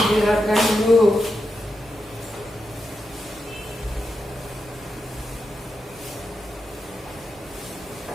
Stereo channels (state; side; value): normal; both; correlation 0.87